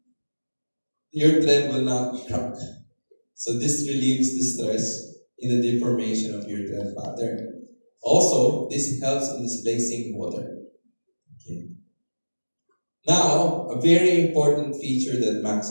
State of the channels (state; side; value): inverted; both; correlation -1.00